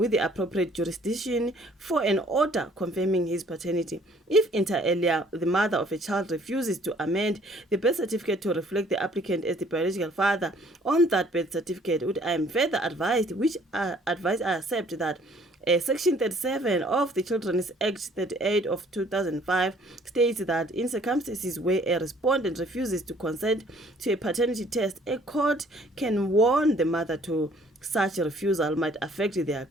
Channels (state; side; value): normal; both; correlation 0.58